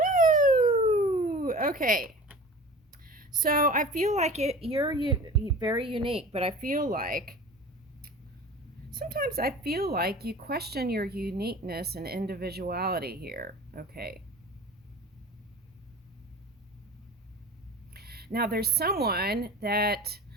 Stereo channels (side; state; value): both; normal; correlation 0.38